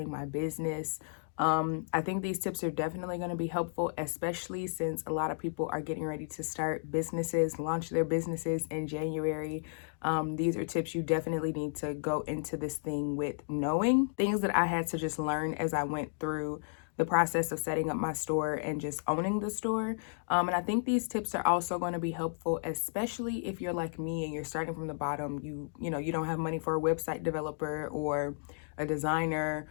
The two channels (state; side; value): silent; right; digital silence